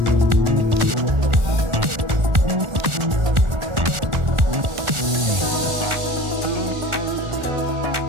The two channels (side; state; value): left; late; 1.4 ms